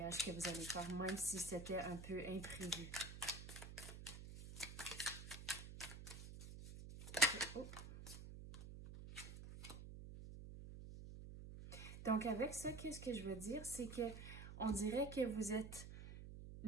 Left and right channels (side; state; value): right; noise; hum, 10 dB below the sound